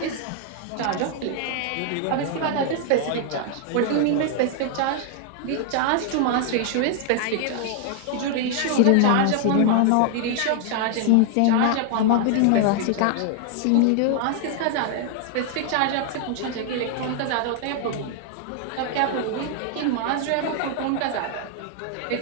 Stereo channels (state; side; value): different; both; correlation 0.00